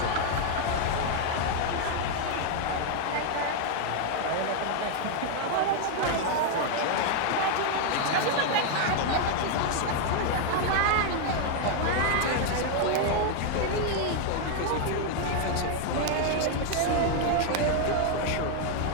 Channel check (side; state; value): both; different; correlation 0.00